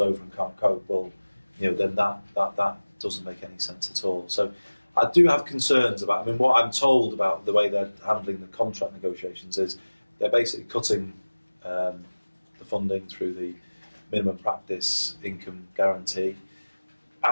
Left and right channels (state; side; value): inverted; both; correlation -1.00